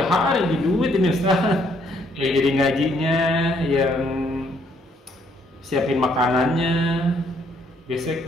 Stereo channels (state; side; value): normal; both; correlation 0.68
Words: hari di duit ini Ustaz. Yang jadi ngajinya, yang siapin makanannya,